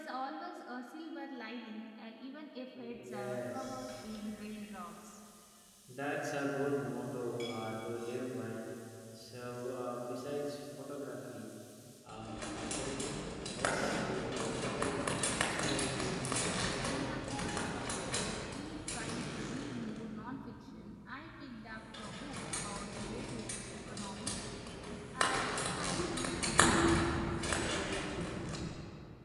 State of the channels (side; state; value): both; identical; correlation 1.00